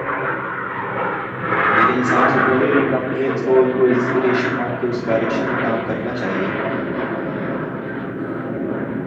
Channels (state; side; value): identical; both; correlation 1.00